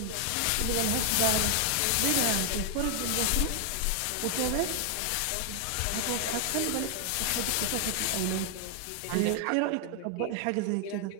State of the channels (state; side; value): different; both; correlation 0.00